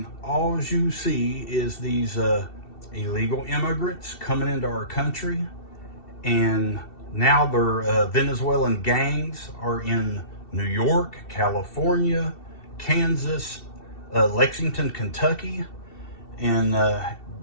all you see is these illegal immigrants coming into our country, and now their Venezuelan gangs are in New York, California, Kansas, Lexington, Kentucky, and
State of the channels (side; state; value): right; late; 2.7 ms